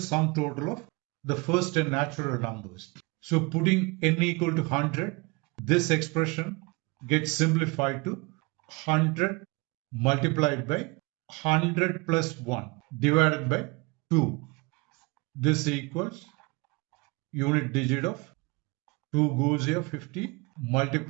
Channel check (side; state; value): left; quieter; 26.4 dB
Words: total of the first 10 natural numbers. So putting n equal to 100, this expression gets simplified to 100 multiplied by 100 plus 1 divided by 2. This equals unit digit of 2 goes here 50